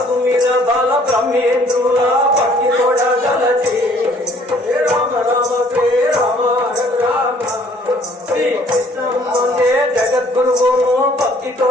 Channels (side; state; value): both; normal; correlation 0.59